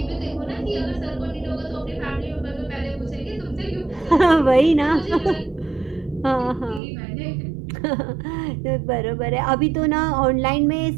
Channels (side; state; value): left; drops out; at 6.8 s